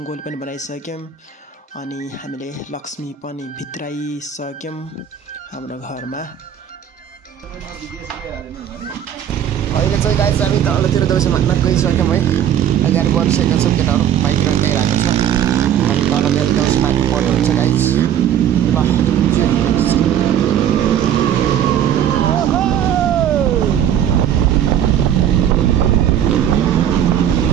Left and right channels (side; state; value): left; quieter; 9.8 dB